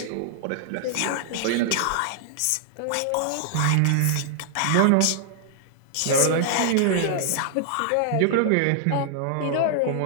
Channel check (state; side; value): different; both; correlation -0.01